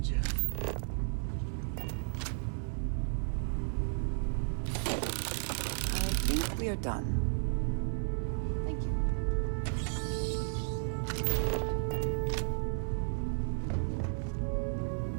Let me just check. I think we are done. Thank you.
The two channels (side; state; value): left; silent; 55 dB below the other